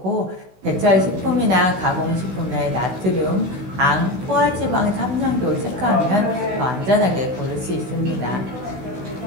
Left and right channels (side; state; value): left; late; 16 ms